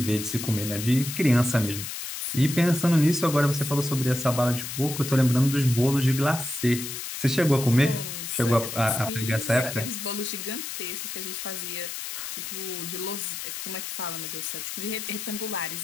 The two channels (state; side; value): noise; left; hiss, 7 dB below the sound